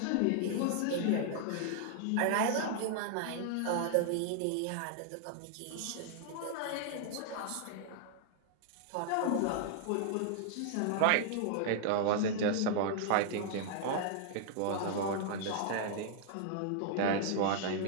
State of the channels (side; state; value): both; different; correlation -0.01